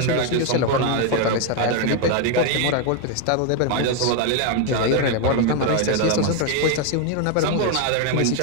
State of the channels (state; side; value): different; both; correlation 0.01